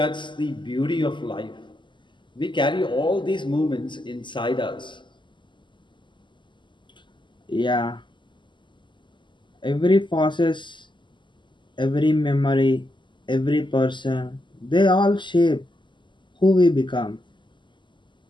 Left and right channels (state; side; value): late; right; 0.23 ms